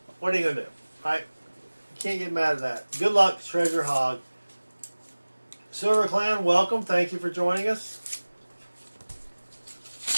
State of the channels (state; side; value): inverted; both; correlation -1.00